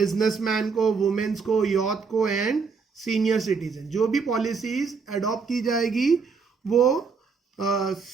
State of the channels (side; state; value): left; quieter; 5.1 dB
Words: को, वुमेन्स को, यूथ को एंड सीनियर सिटीजन। जो भी पॉलिसीज अडॉप्ट की जाएगी वो